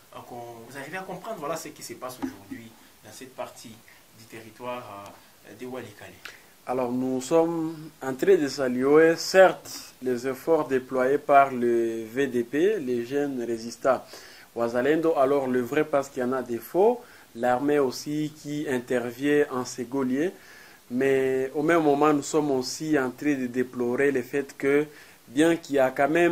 arrivez à comprendre voilà, ce qui se passe aujourd'hui dans cette partie du territoire de Walikale? Alors nous sommes en train de saluer certes les efforts déployés par le VDP, les jeunes résistants Ouazalendo, alors le vrai parce qu'il y en a des faux, l'armée aussi qui intervient en ségolier, mais au même moment nous sommes aussi en train de déplorer le fait que bien qu'il y a quand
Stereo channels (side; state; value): both; identical; correlation 1.00